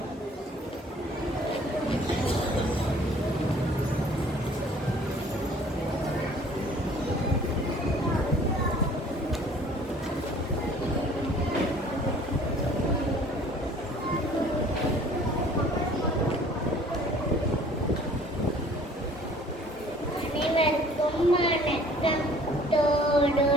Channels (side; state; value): both; normal; correlation 0.53